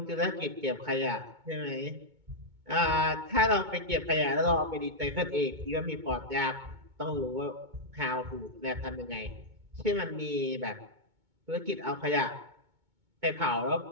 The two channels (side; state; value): left; late; 2.2 ms